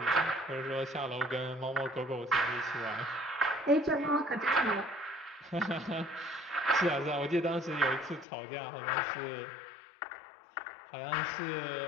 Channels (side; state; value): right; drops out; at 8.2 s